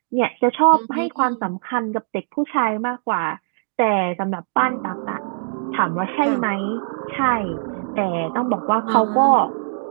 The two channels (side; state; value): left; silent; 65 dB below the other